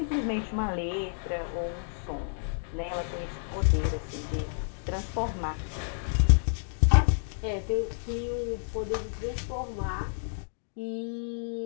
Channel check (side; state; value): right; silent; digital silence